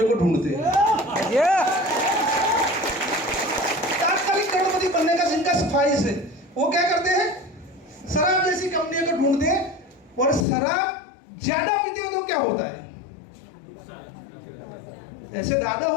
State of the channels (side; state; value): right; drops out; at 10.5 s